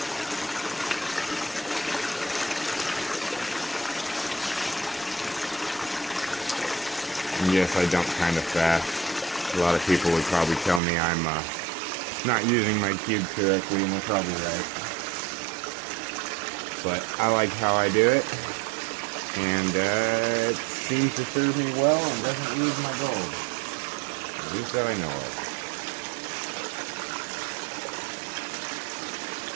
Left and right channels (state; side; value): drops out; left; at 10.8 s